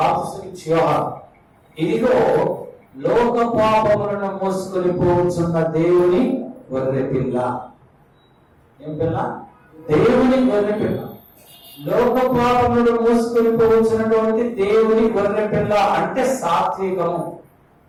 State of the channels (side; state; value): both; identical; correlation 1.00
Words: యోహాను, ఇదిగో లోక పాపములను మోసుకొని పోవచ్చున్న దేవుని గొర్రె పిల్ల. ఏం పిల్ల? దేవుని గొర్రె పిల్ల. లోక పాపములను మోసుకొని పోవచ్చున్నటువంటి దేవుని గొర్రె పిల్ల అంటే సాత్వికము.